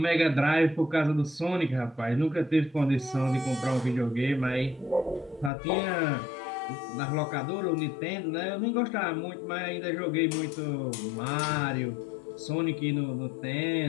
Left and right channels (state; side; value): drops out; right; at 5.5 s